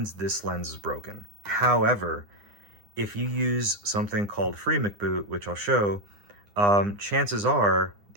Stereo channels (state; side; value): late; left; 9.8 ms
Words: this lens is broken. However, if you use something called free McBoot, which I'll show, chances are